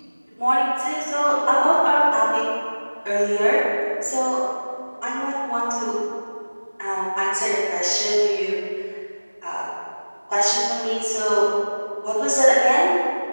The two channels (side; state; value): both; inverted; correlation -1.00